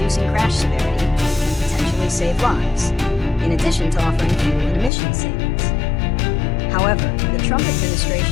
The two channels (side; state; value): right; drops out; at 4.9 s